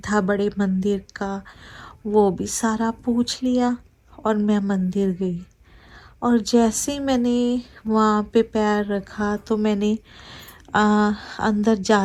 था बड़े मंदिर का वो भी सारा पूछ लिया, और मैं मंदिर गई। और जैसे ही मैंने वहाँ पे पैर रखा, तो मैंने अंदर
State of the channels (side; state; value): both; identical; correlation 1.00